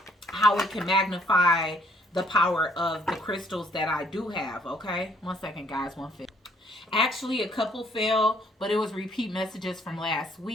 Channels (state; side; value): normal; both; correlation 0.64